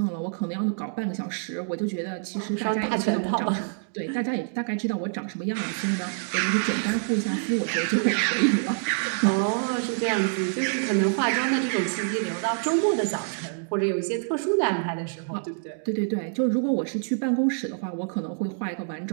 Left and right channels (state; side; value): silent; left; digital silence